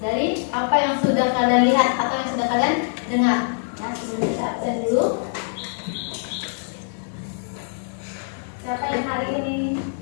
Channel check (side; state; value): right; silent; 63 dB below the other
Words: dari apa yang sudah kalian lihat atau yang sudah kalian dengar. Ya, sebelum kita absen dulu. Siapa yang hari ini